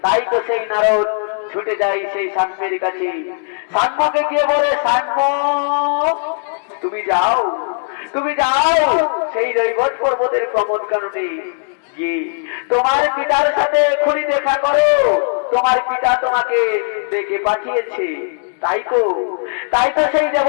তাই তো সেই নারদ ছুটে যায় সেই সাম্যের কাছে। সাম্যকে গিয়ে বলে, সাম্য তুমি যাও সেই বট পর্বতের প্রমোদ কারণে তোমার পিতার সাথে এক্ষুনি দেখা করো, তোমার পিতা তোমাকে ডেকে পাঠিয়েছে। তাই তো সেই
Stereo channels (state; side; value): silent; right; digital silence